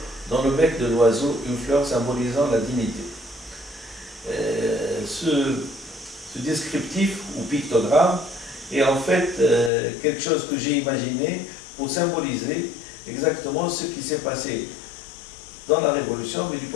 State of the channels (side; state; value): right; drops out; at 9.7 s